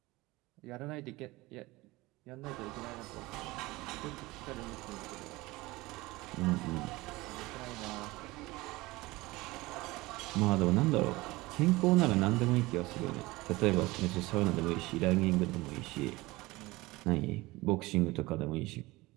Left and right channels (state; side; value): quieter; left; 20.8 dB